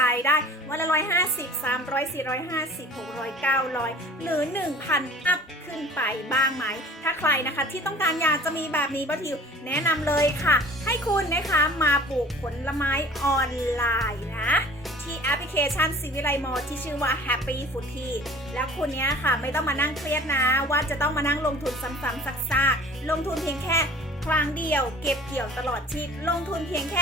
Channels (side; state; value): both; normal; correlation 0.46